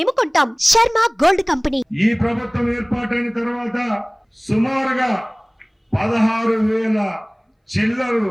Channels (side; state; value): both; identical; correlation 1.00